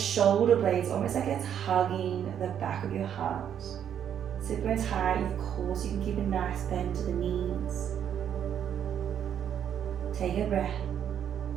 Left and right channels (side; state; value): left; quieter; 9.2 dB